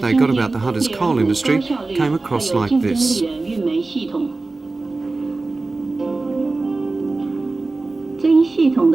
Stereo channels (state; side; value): quieter; left; 3.4 dB